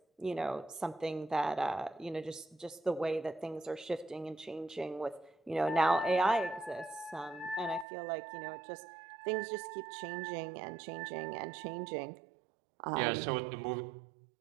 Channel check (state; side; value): drops out; left; at 7.9 s